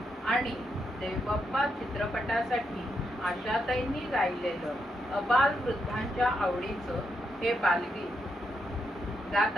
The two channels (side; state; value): both; normal; correlation 0.81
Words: आणि देवबाप्पा चित्रपटासाठी आशाताईंनी गायलेलं अबाल वृद्धांच्या आवडीचं हे बालगीत गात